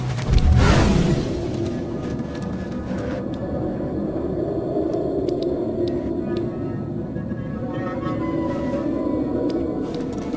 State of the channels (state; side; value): identical; both; correlation 1.00